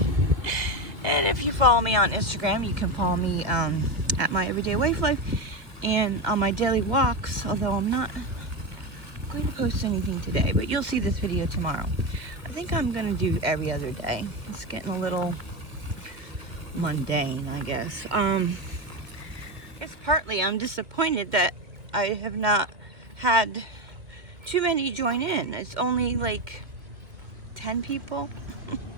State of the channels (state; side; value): late; left; 2.2 ms